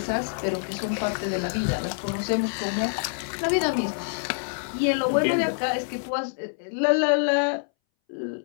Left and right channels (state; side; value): silent; right; 61 dB below the other